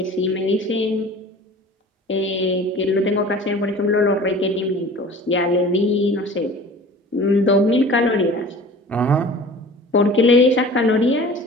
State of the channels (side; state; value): both; normal; correlation 0.42